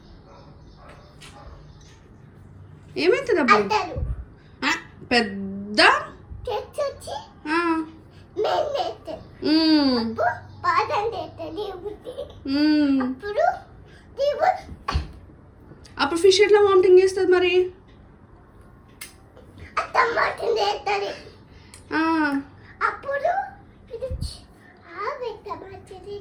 అప్పుడు పెద్ద అప్పుడు ఫిష్ ఎట్లా వామిటింగ్ చేస్తుంది మరి? అప్పుడు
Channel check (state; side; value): identical; both; correlation 1.00